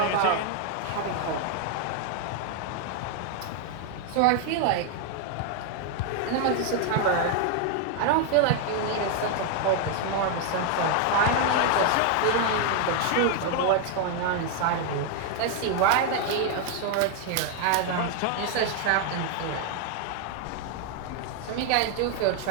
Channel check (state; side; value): different; both; correlation 0.00